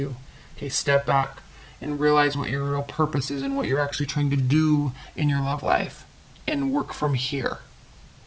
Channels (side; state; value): both; identical; correlation 1.00